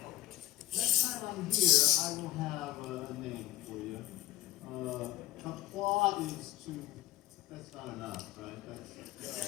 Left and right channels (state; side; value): quieter; right; 15.2 dB